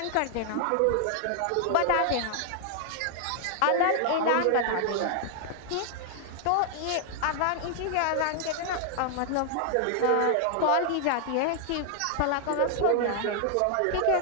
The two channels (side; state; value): both; different; correlation 0.00